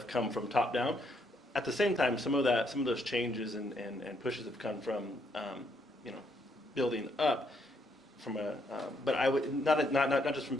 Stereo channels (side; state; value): both; normal; correlation 0.73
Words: come from top down. At the same time, some of those changes and pushes have come from, building up. But I would not just from